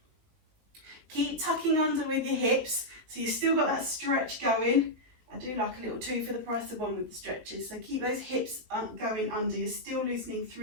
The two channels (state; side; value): late; left; 17 ms